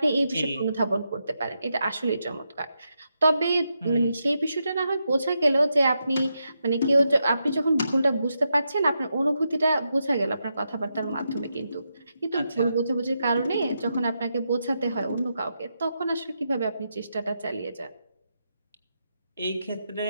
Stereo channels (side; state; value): both; inverted; correlation -0.85